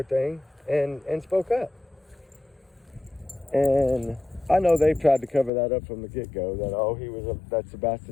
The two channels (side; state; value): right; drops out; at 5.5 s